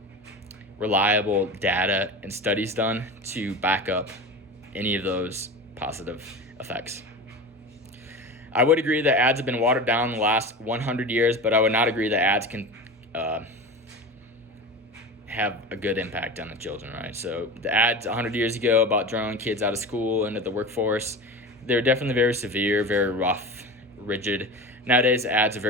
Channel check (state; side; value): normal; both; correlation 0.29